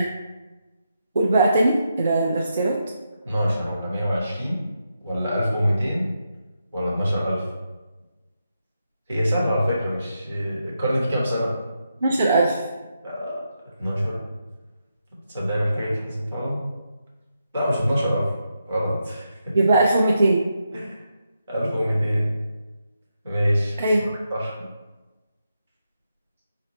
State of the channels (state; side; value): inverted; both; correlation -0.84